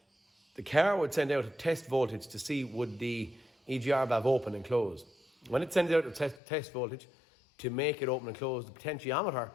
The car would send out a test voltage to see would the EGR valve open and close. When it sends out a test voltage to make it open and close, the potentiometer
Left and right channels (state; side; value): drops out; right; at 6.4 s